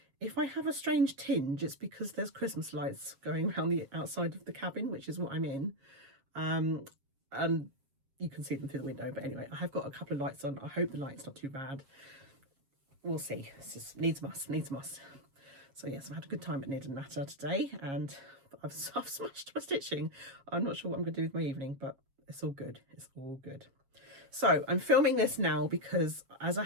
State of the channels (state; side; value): late; left; 7.3 ms